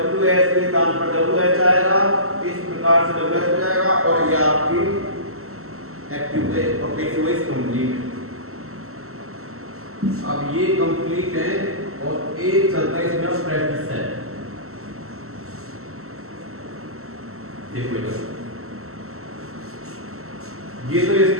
के स्थान पर WH आएगा इस प्रकार से WS हो जाएगा और ये आपकी एक्टिव है और पैसिव वॉइस कंप्लीट है अब ये कंप्लीट है और एक चलता है इसमें प्रैक्टिस है देखो ये तो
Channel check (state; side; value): late; left; 0.63 ms